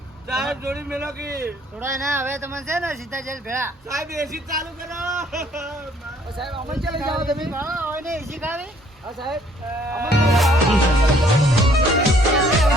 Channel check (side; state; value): both; normal; correlation 0.61